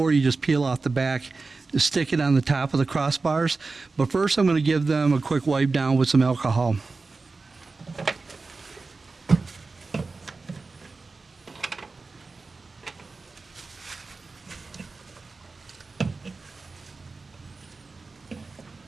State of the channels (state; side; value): quieter; left; 3.9 dB